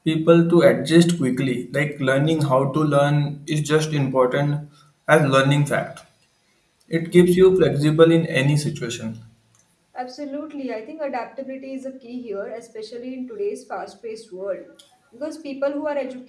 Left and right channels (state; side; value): identical; both; correlation 1.00